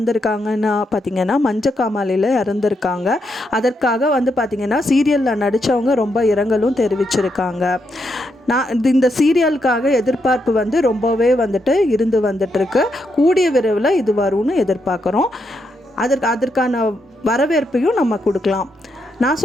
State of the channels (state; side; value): normal; both; correlation 0.80